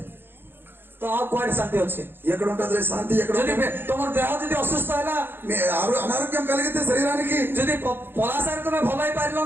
ତ ଆଉ କୁଆଡେ ଶାନ୍ତି ଅଛି? ఎక్కడ ఉంటుంది శాంతి? ఎక్కడ ଯଦି ఉంటుంది? ତମର ଦେହ ଯଦି ଅସୁସ୍ଥ ହେଲା, అనారోగ్యం కలిగితే శరీరానికి, ଯଦି ପଲାସାରେ ତମେ ଭଲ ହେଇପାରିଲ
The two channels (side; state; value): left; late; 0.10 ms